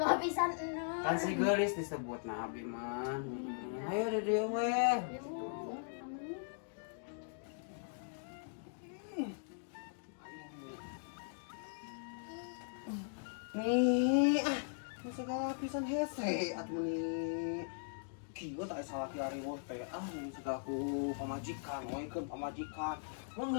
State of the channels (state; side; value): silent; right; digital silence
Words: bawa pisan Nur. Kan si geulis disebutna abi mah. Ayo di dia we. Nih, segala pisan hese atuh nih. Kieu tak salah kiari weh teh. Nih segala ku pamajikan, ngoikeun pamajikan. Mun